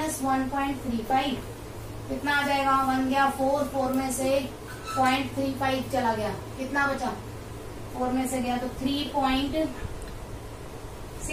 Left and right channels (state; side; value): identical; both; correlation 1.00